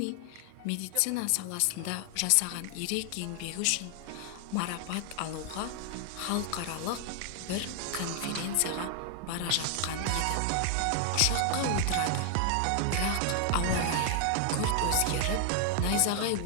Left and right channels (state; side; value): different; both; correlation 0.00